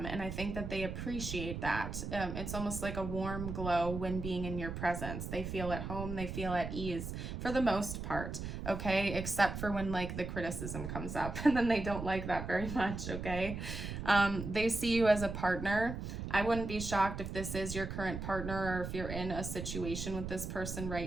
and I think that they appreciate that. It's almost like a warm glow when being in your presence. They feel at home, they feel at ease for the most part, okay, except for when like the criticism comes up, and then they don't like that very much, okay. They see you as a partner. I wouldn't be shocked if this is your current partner, or if you're in a situation with this person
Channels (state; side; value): noise; right; rumble, 6 dB below the sound